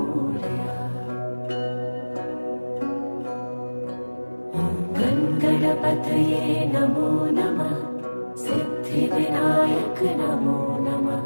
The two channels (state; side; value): inverted; both; correlation -1.00